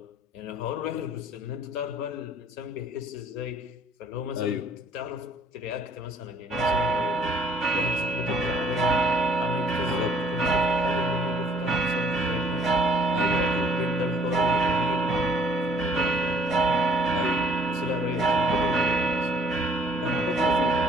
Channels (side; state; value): both; normal; correlation 0.59